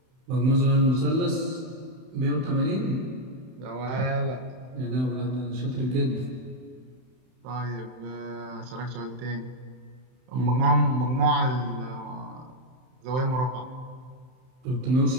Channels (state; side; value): late; left; 31 ms